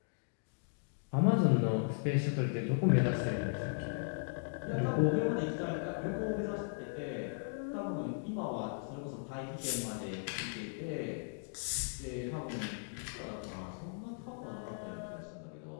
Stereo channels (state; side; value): silent; right; digital silence